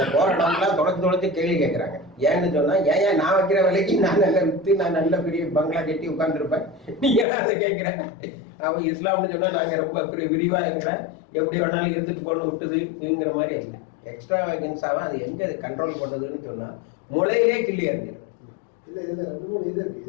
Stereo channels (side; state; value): right; drops out; at 7.2 s